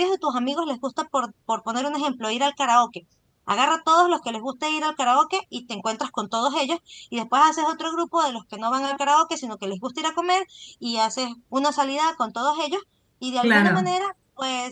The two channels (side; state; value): both; identical; correlation 1.00